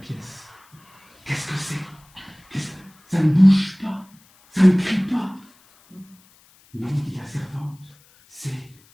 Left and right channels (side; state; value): left; noise; hiss, 30 dB below the sound